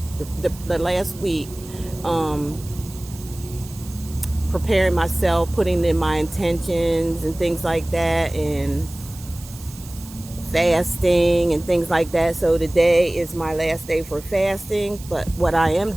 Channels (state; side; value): noise; right; hiss, 18 dB below the sound